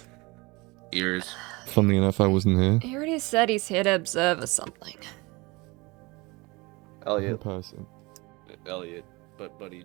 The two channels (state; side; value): quieter; left; 24.6 dB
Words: Ears. Funnily enough, I wasn't here. He already said he's here to observe or something. In Elliot. person. Elliot. But buddy,